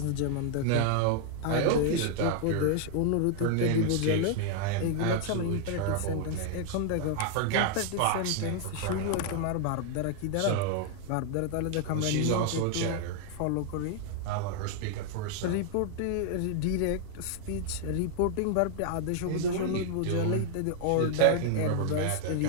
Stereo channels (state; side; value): different; both; correlation 0.00